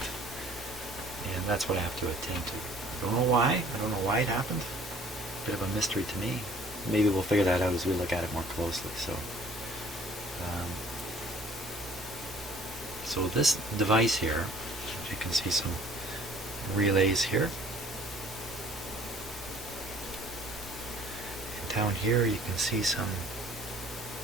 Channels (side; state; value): both; normal; correlation 0.54